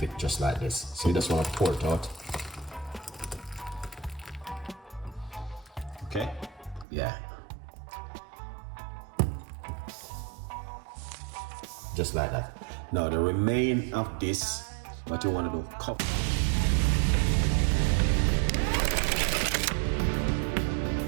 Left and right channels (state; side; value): drops out; left; at 6.9 s